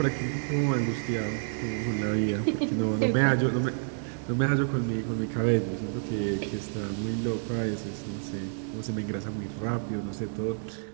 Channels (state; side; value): silent; left; digital silence